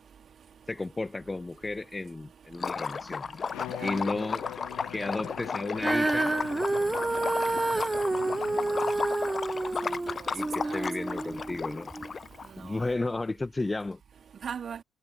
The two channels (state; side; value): normal; both; correlation 0.92